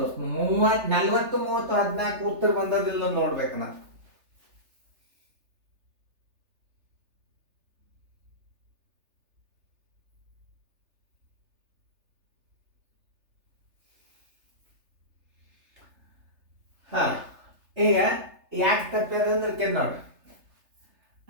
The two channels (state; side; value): late; left; 3.3 ms